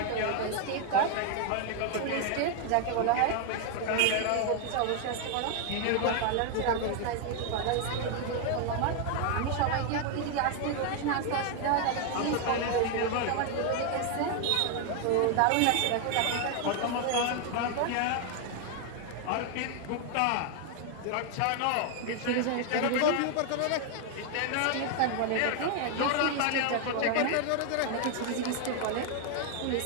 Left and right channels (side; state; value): both; different; correlation 0.01